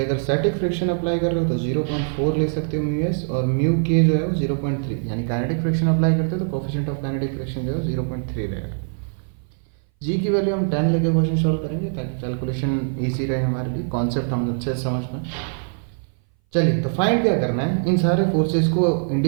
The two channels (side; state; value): left; silent; 60 dB below the other